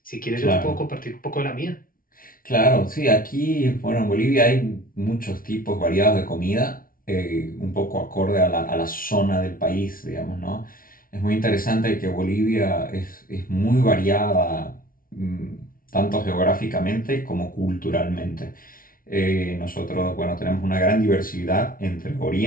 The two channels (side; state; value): right; late; 0.42 ms